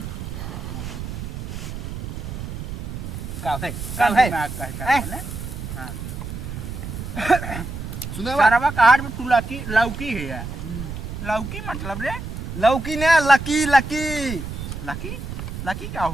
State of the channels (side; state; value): right; noise; rumble, 7 dB below the sound